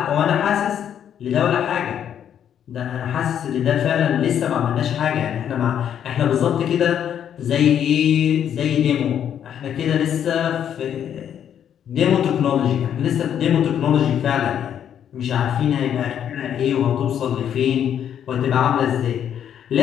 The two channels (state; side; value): quieter; right; 9.3 dB